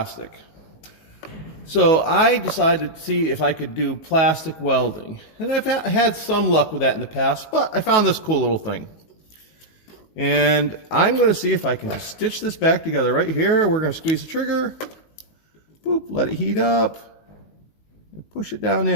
So I decided to see if I could do plastic welding. And I've had some luck with that in the past, but I found this cool little thing. And I'm going to see if I can just stitch this back together right here. We're going to squeeze the trigger. Boop, let it heat up. And push it down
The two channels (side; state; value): right; late; 19 ms